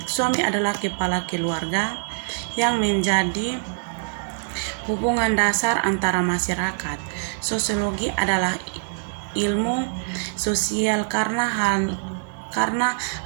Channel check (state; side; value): silent; left; 63 dB below the other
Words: adalah kepala keluarga yang menjadi hubungan dasar antara masyarakat. Sosiologi adalah ilmu sosial karena